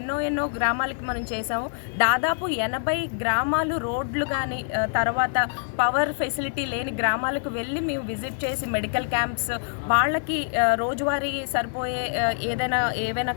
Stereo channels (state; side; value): silent; right; digital silence